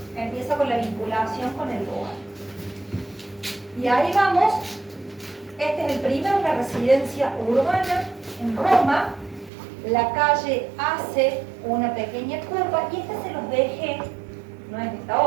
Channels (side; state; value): left; drops out; at 9.5 s